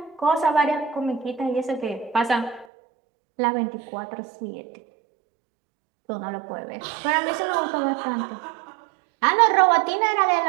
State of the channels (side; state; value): left; drops out; at 2.7 s